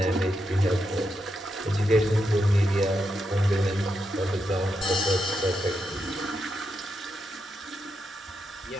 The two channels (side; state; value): both; normal; correlation 0.84